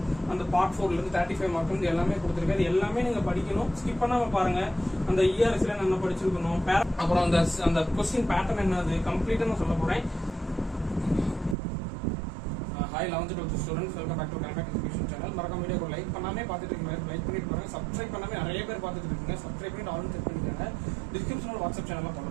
அந்த பார்ட் 4ல இருந்து 35 மார்க் வந்து எல்லாமே கொடுத்துருக்காரு. எல்லாமே நீங்க படிக்கணும், ஸ்கிப் பண்ணாம பாருங்க. அந்த இஆர்எஸ்ல நம்ம படிச்சிருக்கணும், அப்புறம் அந்த கொஸ்டின் பேட்டர்ன் என்னது கம்ப்ளீட்டா நான் சொல்ல போறேன். Hi 11th 12th students, welcome back to Connect Education channel. மறக்காம வீடியோக்கு லைக் பண்ணாமே பார்த்துட்டு இருக்கீங்க, லைக் பண்ணிட்டு பாருங்க. சப்ஸ்கிரைப் பண்ணாமே நிறைய பேர் பார்த்துட்டு இருக்கீங்க, சப்ஸ்கிரைப் பண்ணிட்டு ஆல் செக் பண்ணிக்கோங்க. டிஸ்கிரிப்ஷன்ல வாட்ஸ்அப் சேனல்ல ஃபாலோ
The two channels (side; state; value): left; drops out; at 11.6 s